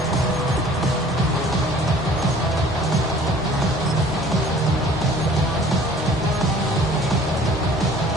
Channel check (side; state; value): both; normal; correlation 0.51